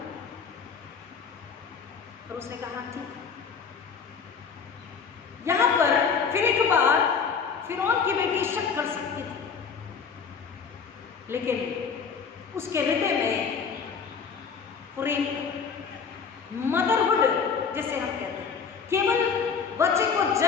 और उसने कहा ठीक। यहां पर फिर एक बार फिरौन की बेटी शक कर सकती थी, लेकिन उसके हृदय में प्रेम, मदरहुड जैसे हम कहते हैं, केवल बच्चे को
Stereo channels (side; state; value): right; quieter; 6.0 dB